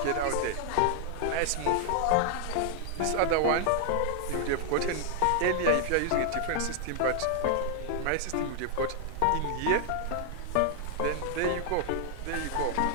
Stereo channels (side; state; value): both; different; correlation 0.00